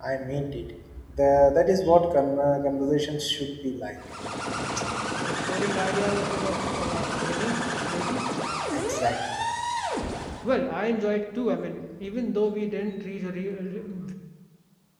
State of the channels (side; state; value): both; identical; correlation 1.00